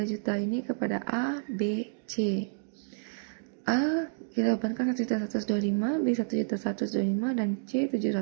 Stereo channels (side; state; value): left; silent; digital silence